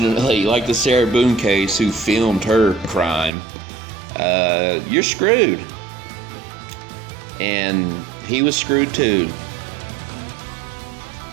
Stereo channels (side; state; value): left; drops out; at 3.3 s